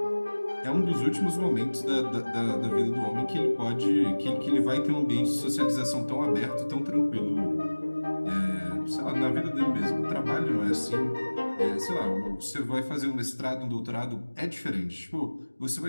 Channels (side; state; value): both; inverted; correlation -1.00